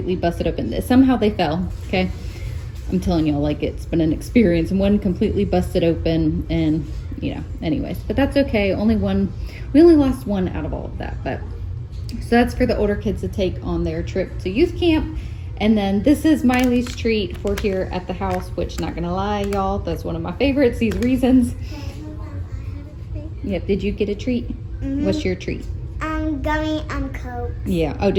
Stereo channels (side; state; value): both; identical; correlation 1.00